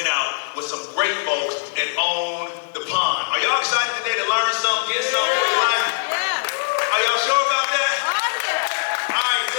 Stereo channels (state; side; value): silent; right; digital silence